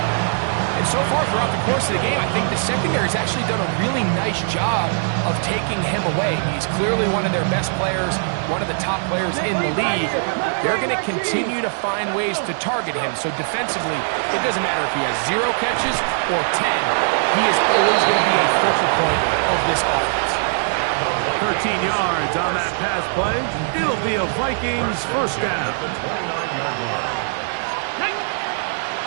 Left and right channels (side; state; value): left; silent; 62 dB below the other